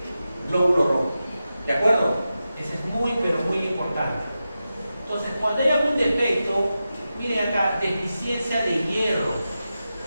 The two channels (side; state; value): both; inverted; correlation -0.91